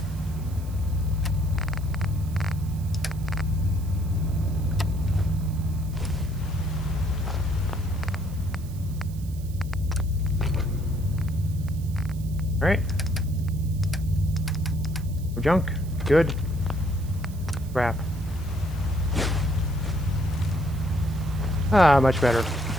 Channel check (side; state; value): right; noise; hiss, 21 dB below the sound